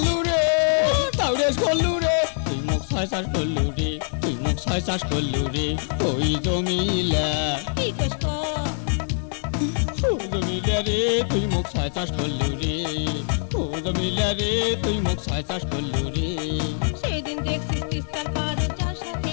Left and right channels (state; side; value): silent; right; digital silence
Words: রে তাউরেস করলু রে তুই মুখ ছয় চাষ করলু রে তুই মুখ ছয় চাষ করলু রে ওই জমিলা কি কইস ক ও জমিলা রে তুই মুখ ছয় চাষ করলু রে ও জমিলা রে তুই মুখ ছয় চাষ করলু রে সেদিন দেখছিস তিস্তার পাড়ে যার সাথে